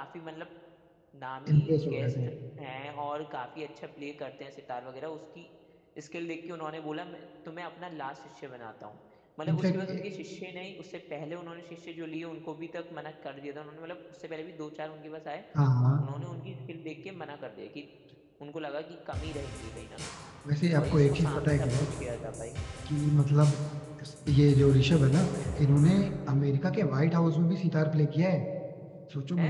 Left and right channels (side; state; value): both; identical; correlation 1.00